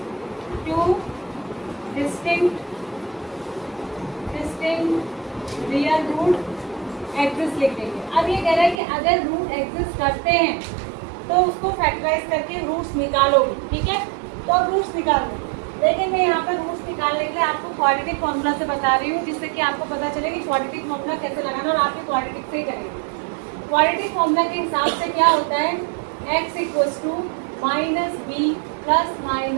2 डिस्टिंक्ट रियल रूट एग्जिस्ट लिख देंगे। अब ये कह रहा है कि अगर रूट एग्जिस्ट करते हैं तो उसको फैक्टराइज करके रूट्स निकालोगे, ठीक है। तो अब रूट्स निकालो, लेकिन मैं यहाँ पर रूट्स निकालने के लिए आपको क्वाड्रेटिक फॉर्मूला से बता रही हूँ, जिससे कि आपको पता चले कि क्वाड्रेटिक फॉर्मूला कैसे लगाना, और आपके क्वाड्रेटिक से ही करेंगे। क्वाड्रेटिक फॉर्मूला के हिसाब से क्या होता है? x = -b ±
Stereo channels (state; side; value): drops out; left; at 8.8 s